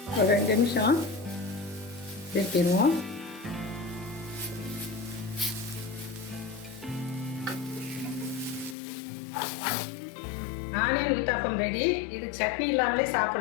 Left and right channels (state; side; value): drops out; right; at 8.8 s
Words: ஒரு 2 நிமிஷம் திருப்பிடுவோம். Onion uttapam ready. இது சட்னி இல்லாமலே